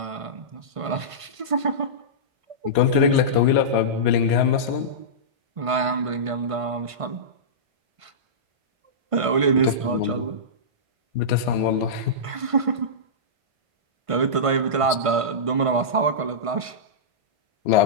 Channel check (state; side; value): late; left; 1.5 ms